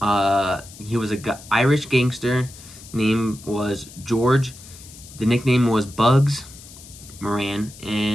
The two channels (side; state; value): left; noise; hiss, 18 dB below the sound